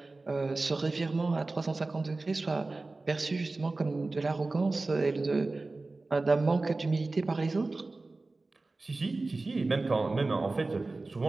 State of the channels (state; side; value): quieter; left; 3.3 dB